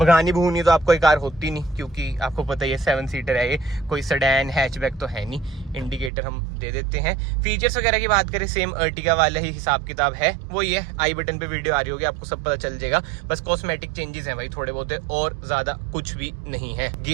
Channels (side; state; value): left; drops out; at 6.1 s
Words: भूनी तो आपको ये कार होती नहीं, क्योंकि आपको पता ही है 7 सीटर है ये, कोई सेडान हैचबैक तो है नहीं। इंडिकेटर हम दे देते हैं। फीचर्स वगैरह की बात करें, सेम अर्टिगा वाला ही हिसाब किताब है। वो ये आई बटन पे वीडियो आ रही होगी, आपको सब पता चल जाएगा। बस कॉस्मेटिक चेंजेस हैं भाई थोड़े बहुत, और ज्यादा कुछ भी नहीं है।